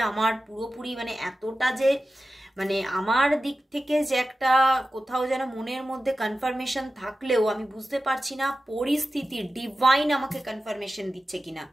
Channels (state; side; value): normal; both; correlation 0.94